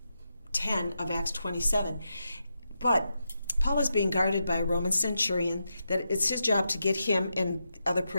10 of Acts 27. But Paul is being guarded by a Roman centurion, that it's his job to get him and other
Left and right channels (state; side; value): inverted; both; correlation -0.86